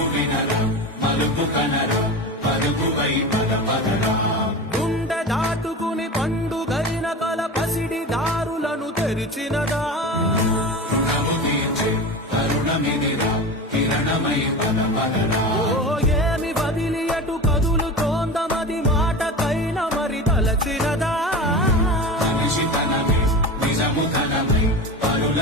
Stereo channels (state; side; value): normal; both; correlation 0.29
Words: వినరా మలుపు కనరా పరుగువై పద పదరా గుండె దాటుకుని పండుగైన కల పసిడి దారులను తెరిచినదా రుణము తీర్చే కరుణమిదిరా కిరణమై పద పదరా ఓ ఏమి వదిలి అటు కదులుతోందమది మాటకైన మరి తలచినదా మనిషితనమే నిజముతనమై